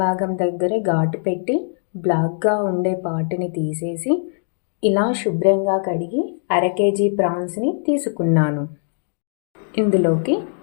భాగం దగ్గర ఘాటు పెట్టి బ్లాక్గా ఉండే పాటుని తీసేసి ఇలా శుభ్రంగా కడిగి అర కేజీ ప్రాన్స్ని తీసుకున్నాను. ఇందులోకి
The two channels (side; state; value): right; silent; digital silence